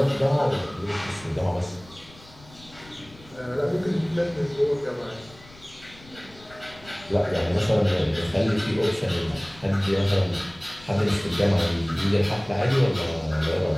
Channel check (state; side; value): noise; left; rumble, 23 dB below the sound